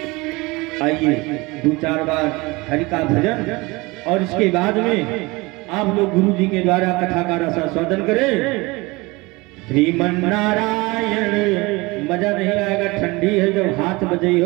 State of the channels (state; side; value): quieter; left; 23.7 dB